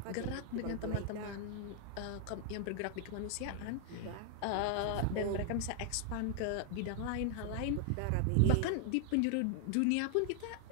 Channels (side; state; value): both; different; correlation 0.00